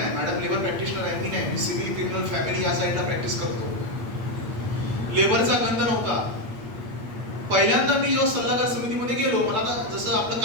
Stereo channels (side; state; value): left; late; 8.6 ms